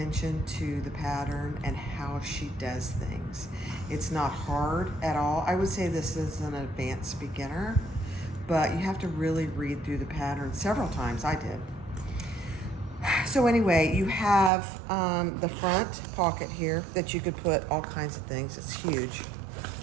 to the pattern and how she does things. It's not hard at all. I would say this is an advanced beginner, but you have to really read through the pattern several times. I did. So anyway, you have the front pocket here that you could put all kinds of things. It's huge.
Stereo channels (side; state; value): left; drops out; at 14.5 s